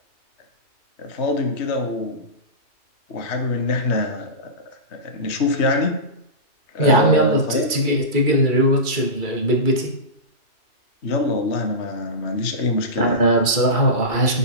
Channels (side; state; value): right; late; 2.3 ms